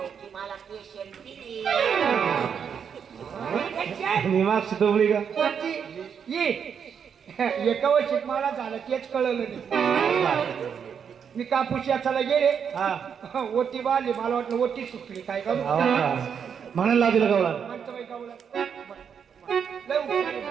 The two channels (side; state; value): left; quieter; 7.3 dB